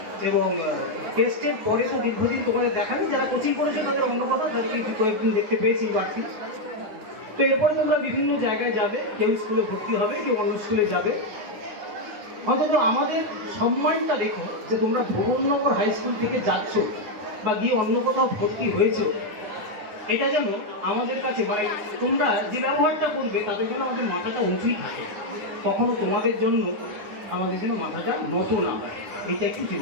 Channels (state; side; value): late; left; 9.8 ms